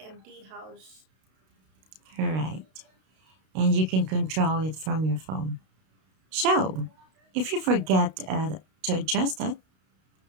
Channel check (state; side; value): late; left; 32 ms